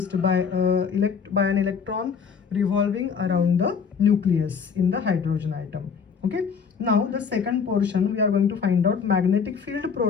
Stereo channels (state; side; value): quieter; right; 6.2 dB